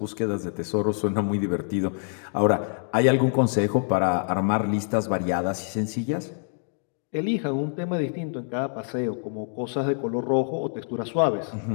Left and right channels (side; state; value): right; silent; 57 dB below the other